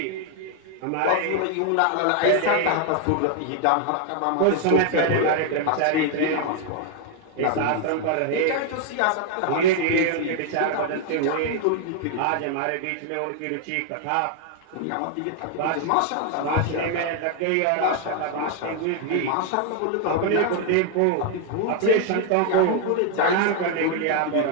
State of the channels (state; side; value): different; both; correlation 0.00